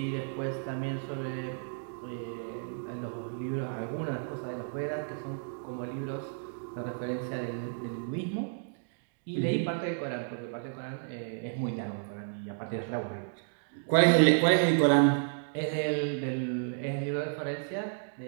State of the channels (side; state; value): left; silent; digital silence